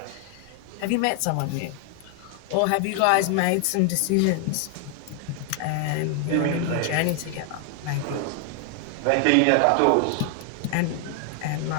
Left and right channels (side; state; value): both; different; correlation 0.00